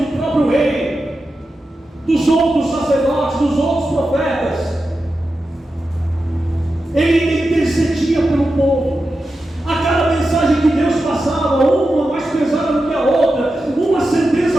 próprio rei, dos outros sacerdotes, dos outros profetas. Ele intercedia pelo povo. A cada mensagem que Deus passava, uma mais pesada do que a outra, uma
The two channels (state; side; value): normal; both; correlation 0.91